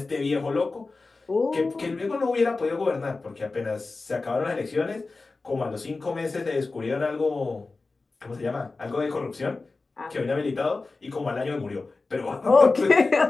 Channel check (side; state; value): right; quieter; 3.7 dB